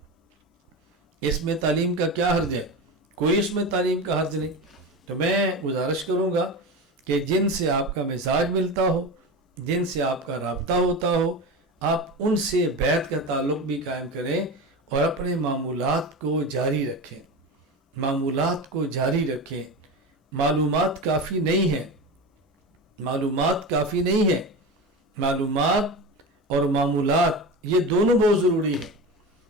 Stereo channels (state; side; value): normal; both; correlation 0.25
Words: اس میں تعلیم کا کیا حرج ہے؟ کوئی اس میں تعلیم کا حرج نہیں۔ تو میں گزارش کروں گا کہ جن سے آپ کا مزاج ملتا ہو، جن سے آپ کا رابطہ ہوتا ہو آپ ان سے بیعت کا تعلق بھی قائم کریں اور اپنے معمولات کو جاری رکھیں۔ معمولات کو جاری رکھیں۔ معلومات کافی نہیں ہے، معلومات کافی نہیں ہے، معلومات اور معمولات یہ دونوں بہت ضروری ہیں۔